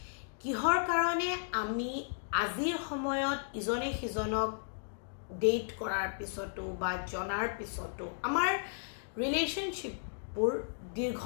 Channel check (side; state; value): right; silent; digital silence